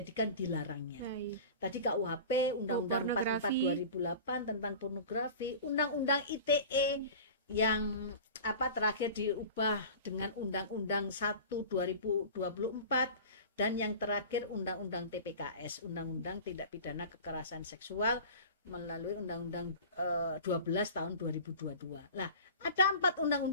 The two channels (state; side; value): inverted; both; correlation -0.37